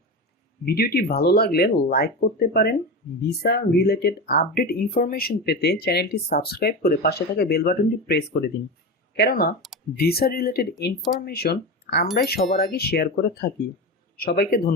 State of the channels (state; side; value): normal; both; correlation 0.22